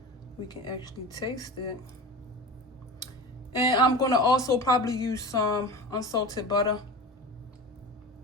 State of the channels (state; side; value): normal; both; correlation 0.31